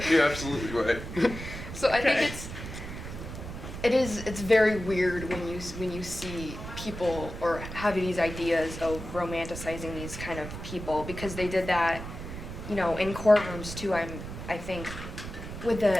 you're absolutely right. So I think it's very weird when you see people or have these ideas of romanticizing these kind of people, because they did that, you know, in courtrooms too. I think with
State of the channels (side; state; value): right; noise; rumble, 9 dB below the sound